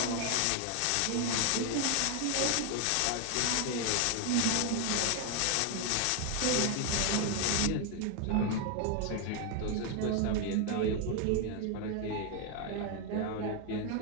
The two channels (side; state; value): both; different; correlation 0.01